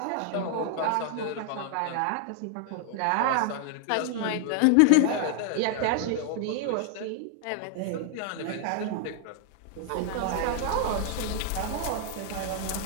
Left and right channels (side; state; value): both; different; correlation 0.00